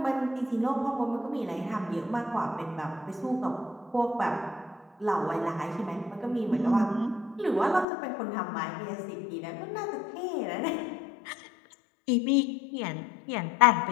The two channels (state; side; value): drops out; right; at 7.9 s